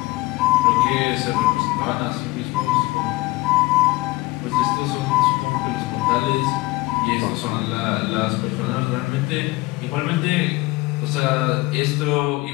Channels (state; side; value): quieter; right; 21.2 dB